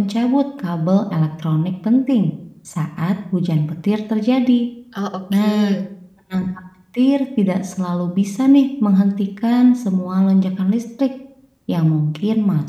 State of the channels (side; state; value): both; identical; correlation 1.00